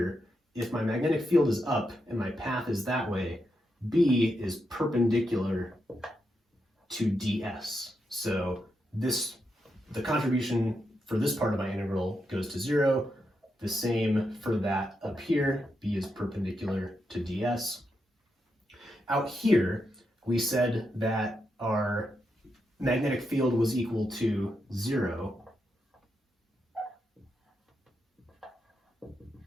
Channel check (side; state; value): both; normal; correlation 0.84